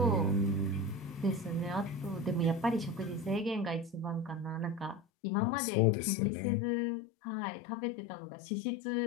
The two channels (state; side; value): drops out; right; at 5.0 s